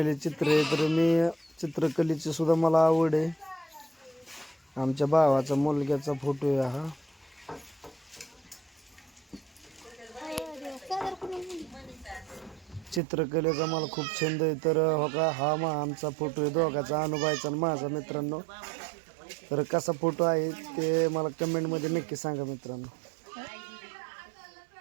चित्र आहे. तर मी चित्रकलेची सुद्धा मला आवड आहे. आमच्या भावाचा मुलग्याचा फोटो आहे हा. चित्रकलेचा मला खूप छंद आहे. तर बघा हा आमचा फोटो आहे दोघाचा अनुभवायचा आणि माझा मित्रांनो. तर कसा फोटो आहे ते मला कमेंटमध्ये नक्की सांगा मित्रांनो.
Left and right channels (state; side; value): drops out; left; at 13.0 s